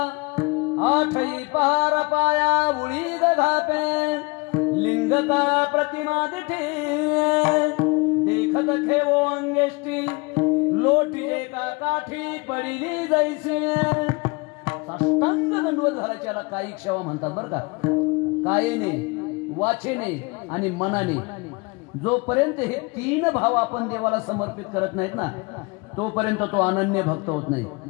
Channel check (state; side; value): quieter; right; 28.0 dB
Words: आठई पार पाया उळी घापे लिंग का प्रतिमा दिठे देखत खेवो अंगेष्टी लोटी का काठी पडिली जैसी. साष्टांग दंडवत घालायच्याला कायिक सेवा म्हणतात बरं का. कायेने वाचेने आणि मनाने जोपर्यंत हे 3 भाव आपण देवाला समर्पित करत नाहीत ना तोपर्यंत तो अनन्य भक्त होत नाही.